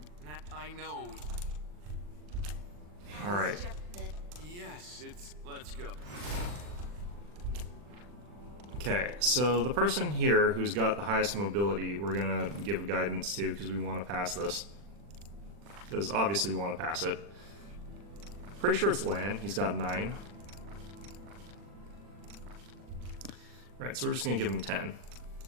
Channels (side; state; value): left; late; 40 ms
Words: I know. Alright. Yes, it's. Let's go. Okay, so the person here who's got the highest mobility, we're gonna give guidance to because we want to pass this. Because obviously we want to pass it. Pretty sure it's Lan. He's got 9. Right, so we're just gonna give him 10.